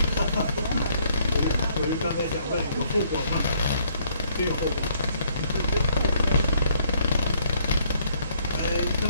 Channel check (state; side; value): inverted; both; correlation -0.66